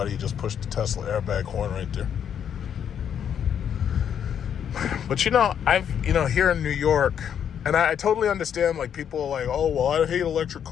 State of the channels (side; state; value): right; quieter; 8.6 dB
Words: you just push the Tesla airbag horn right there. But here in New York, and I totally understand, like, people are like, oh, well, I hate electric